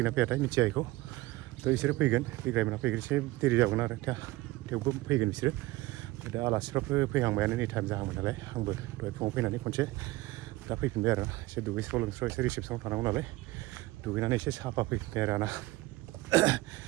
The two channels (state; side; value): quieter; left; 19.3 dB